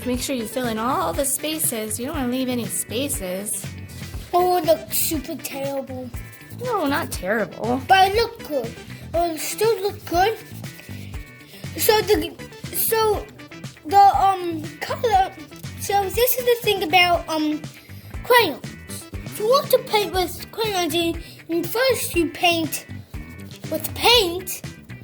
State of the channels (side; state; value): both; identical; correlation 1.00